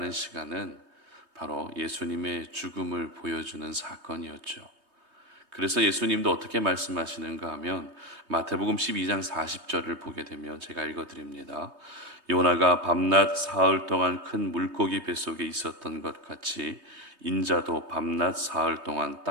시간은 바로 예수님의 죽음을 보여주는 사건이었죠. 그래서 예수님도 어떻게 말씀하시는가 하면 마태복음 12장 40절을 보게 되면 제가 읽어드립니다. 요나가 밤낮 사흘 동안 큰 물고기 뱃속에 있었던 것 같이 인자도 밤낮 사흘 동안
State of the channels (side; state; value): left; late; 3.2 ms